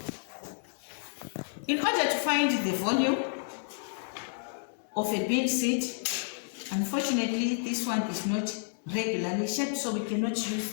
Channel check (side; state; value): right; silent; 57 dB below the other